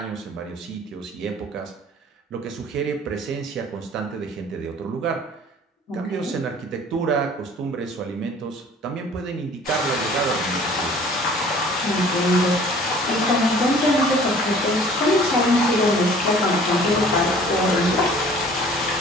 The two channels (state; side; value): normal; both; correlation 0.50